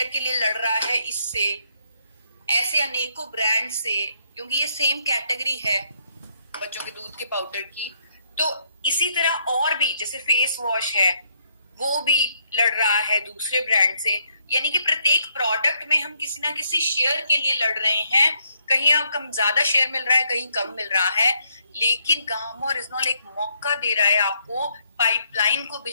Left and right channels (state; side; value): inverted; both; correlation -0.73